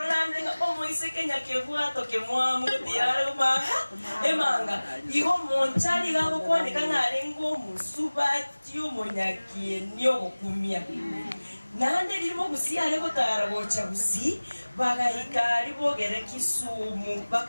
omoise Kenya kevuato kemwamu diaruma emanga igo monchari gabo kwanika ngarengo musubati omonyakieni ogokumia nande limo gusiare gotara gocha gusi bagahikari bogere Kisumu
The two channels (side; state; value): both; inverted; correlation -1.00